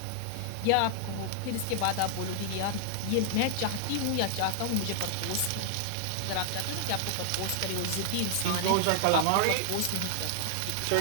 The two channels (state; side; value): different; both; correlation -0.01